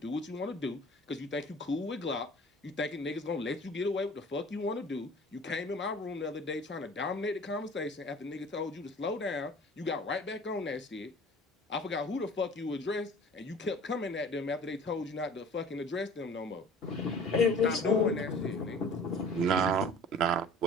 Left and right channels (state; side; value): normal; both; correlation 0.46